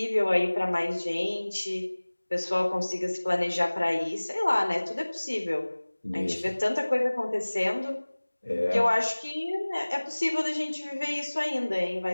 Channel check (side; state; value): both; inverted; correlation -1.00